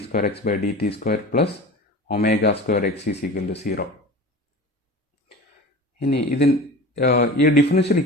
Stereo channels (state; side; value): normal; both; correlation 0.35